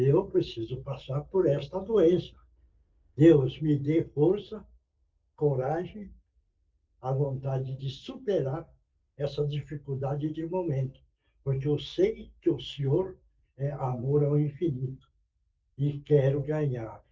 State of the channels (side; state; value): both; identical; correlation 1.00